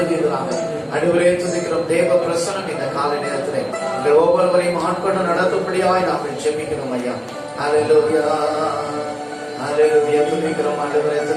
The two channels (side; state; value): both; identical; correlation 1.00